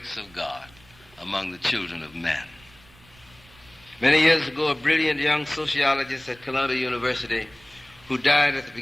of God among the children of men. Many years ago, a brilliant young sociologist at Columbia University, who died at the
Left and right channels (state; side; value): noise; right; rumble, 26 dB below the sound